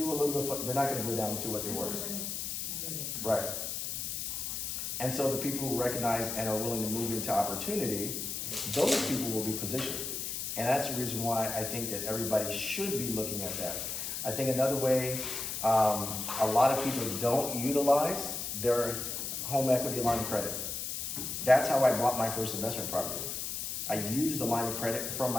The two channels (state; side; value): noise; left; hiss, 4 dB below the sound